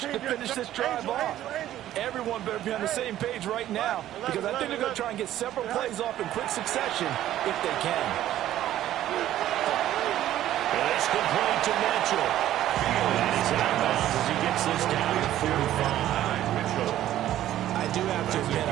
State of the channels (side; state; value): left; quieter; 12.9 dB